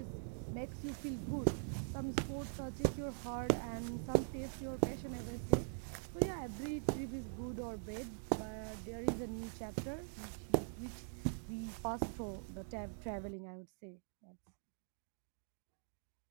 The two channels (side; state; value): left; silent; digital silence